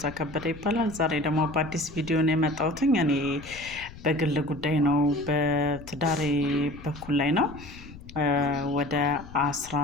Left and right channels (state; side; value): noise; left; rumble, 17 dB below the sound